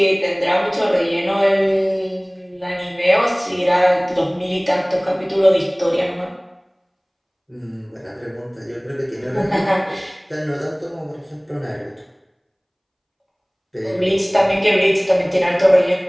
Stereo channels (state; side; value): identical; both; correlation 1.00